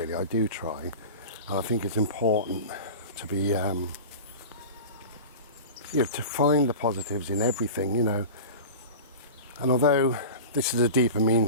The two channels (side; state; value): both; inverted; correlation -0.33